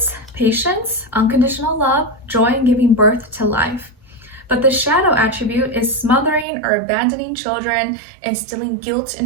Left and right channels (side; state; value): left; drops out; at 6.5 s